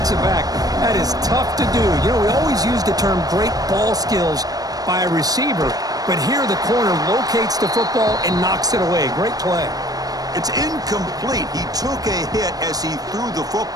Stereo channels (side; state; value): left; late; 0.18 ms